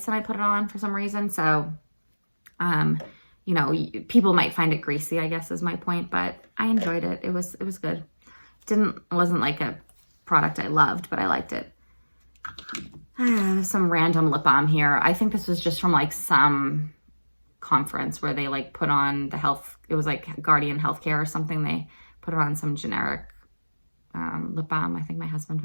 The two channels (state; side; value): inverted; both; correlation -1.00